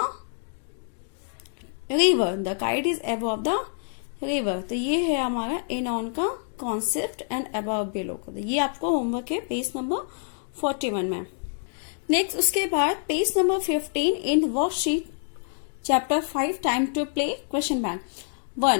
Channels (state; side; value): silent; right; digital silence